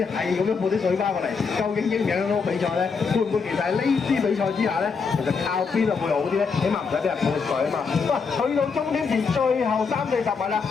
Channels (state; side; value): quieter; right; 5.3 dB